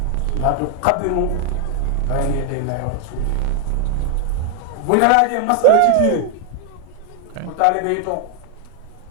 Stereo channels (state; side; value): different; both; correlation 0.00